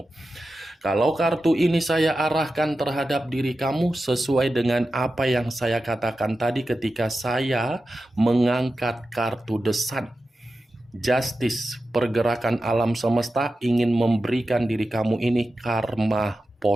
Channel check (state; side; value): normal; both; correlation 0.92